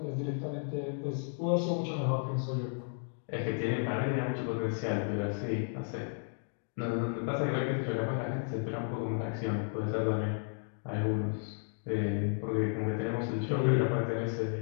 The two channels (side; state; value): right; silent; 56 dB below the other